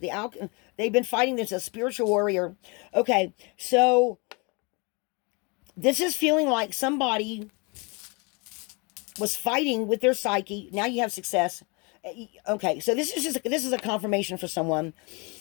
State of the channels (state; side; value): quieter; right; 30.4 dB